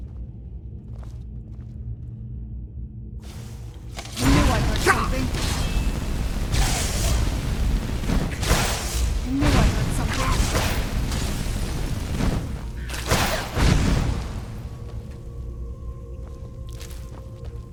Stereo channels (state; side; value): identical; both; correlation 1.00